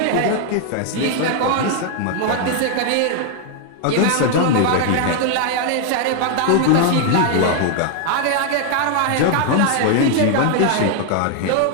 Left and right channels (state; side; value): different; both; correlation 0.00